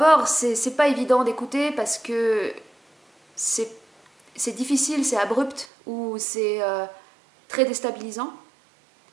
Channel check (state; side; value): drops out; left; at 5.7 s